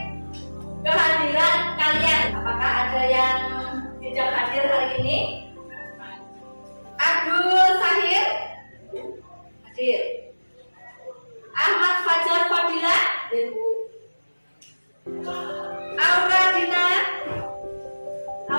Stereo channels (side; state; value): both; inverted; correlation -1.00